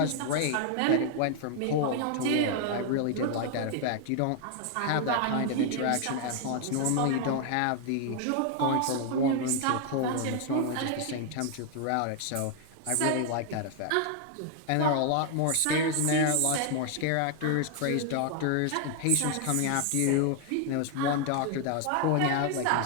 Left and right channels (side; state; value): both; different; correlation 0.00